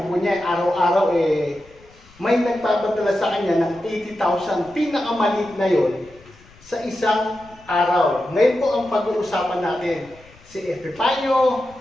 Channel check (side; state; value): left; noise; rumble, 26 dB below the sound